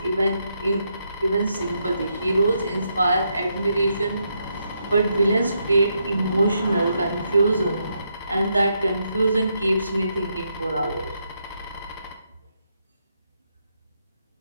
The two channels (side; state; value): both; inverted; correlation -0.80